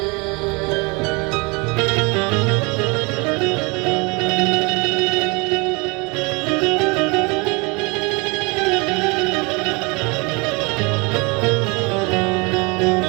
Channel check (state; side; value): quieter; left; 28.4 dB